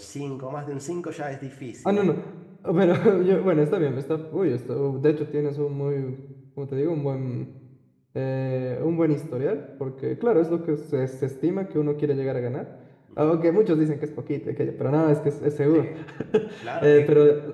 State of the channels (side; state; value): both; identical; correlation 1.00